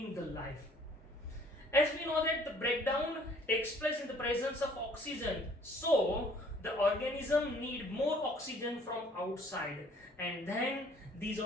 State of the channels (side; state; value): both; normal; correlation 0.57